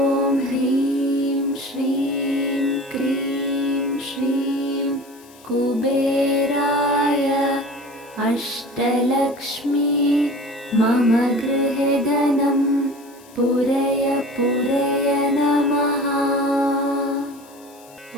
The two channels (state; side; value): noise; left; hiss, 25 dB below the sound